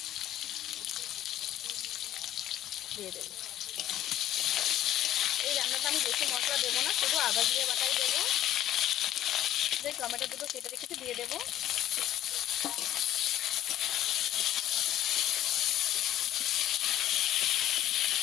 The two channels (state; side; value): quieter; right; 12.6 dB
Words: এই রান্নাটা আমি বেশি মশলা দেবো না, শুধু আদা জিরে বাটাই দেবো। যে টমেটো দুটো কেটে রেখেছি দিয়ে দেবো।